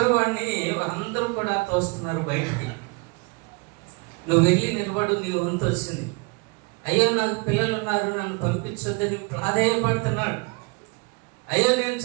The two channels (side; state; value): left; quieter; 30.4 dB